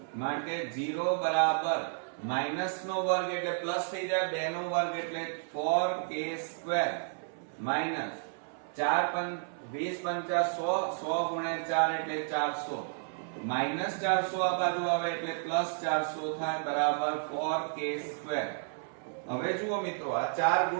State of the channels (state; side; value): silent; left; 56 dB below the other